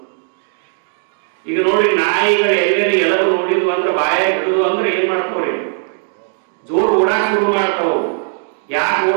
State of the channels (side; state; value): left; silent; digital silence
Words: ಈಗ ನೋಡಿ, ನಾಯಿಗಳು ಎಲ್ಲೆಲ್ಲಿ ಎಲವು ನೋಡಿದ್ವು ಅಂದ್ರೆ ಬಾಯಾಗ ಹಿಡಿದು ಅಂದ್ರೆ ಏನ್ ಮಾಡ್ತಾವ್ರಿ? ಜೋರು ಓಡಾಕ್ ಶುರು ಮಾಡ್ತಾವ. ಯಾಕೆ